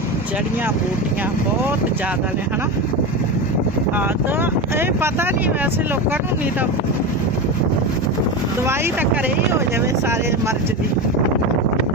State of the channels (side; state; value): both; normal; correlation 0.20